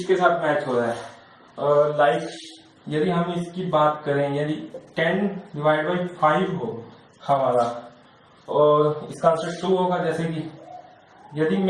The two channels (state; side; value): identical; both; correlation 1.00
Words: साथ मैच हो रहा है। लाइक यदि हम इसकी बात करें, यदि 10 डिवाइड बाई 5 हो हमारा और इसका आंसर 2 होगा, जैसे कि यदि